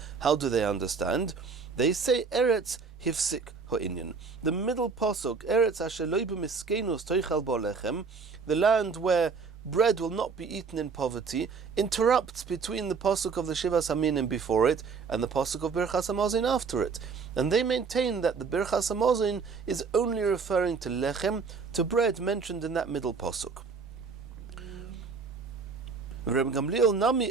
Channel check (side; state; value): left; quieter; 5.1 dB